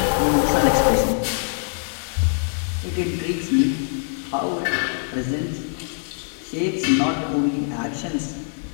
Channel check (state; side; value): silent; right; digital silence